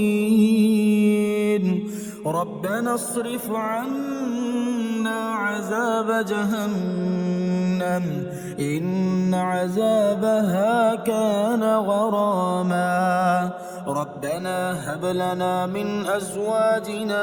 ربنا اصرف عنا عذاب جهنم إن عذابها كان غراما ربنا هب لنا من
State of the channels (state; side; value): identical; both; correlation 1.00